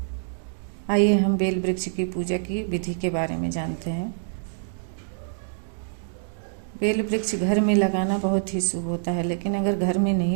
आइए हम बेल वृक्ष की पूजा की विधि के बारे में जानते हैं। बेल वृक्ष घर में लगाना बहुत ही शुभ होता है, लेकिन अगर घर में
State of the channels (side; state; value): left; silent; digital silence